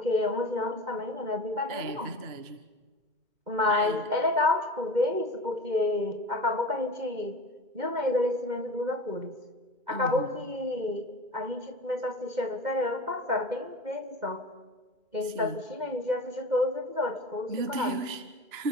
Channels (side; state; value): left; late; 2.9 ms